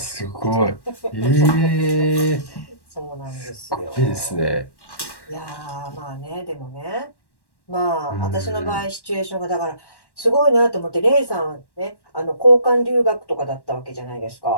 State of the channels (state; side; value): late; right; 1.1 ms